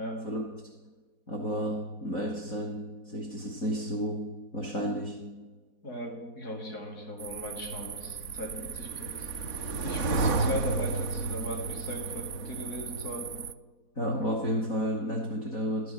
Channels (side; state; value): right; late; 4.1 ms